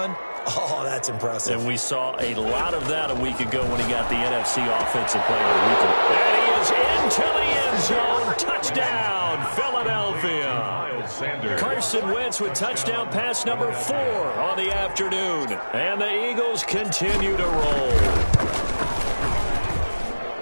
Oh, that's impressive. And we saw a lot of that a week ago when he got the NFC Offensive Player of the Week. And he is into the end zone. Touchdown, Philadelphia. Carson Wentz with touchdown pass number 4 on the afternoon. And the Eagles continue to roll.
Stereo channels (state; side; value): inverted; both; correlation -1.00